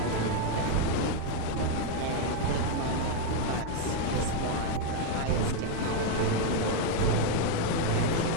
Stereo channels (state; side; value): different; both; correlation 0.01